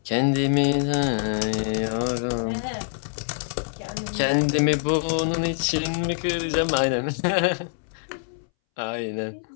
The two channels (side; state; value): right; silent; 62 dB below the other